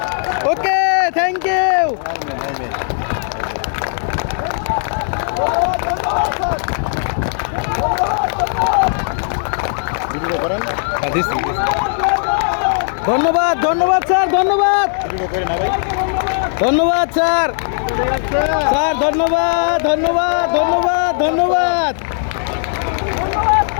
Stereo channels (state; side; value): silent; right; digital silence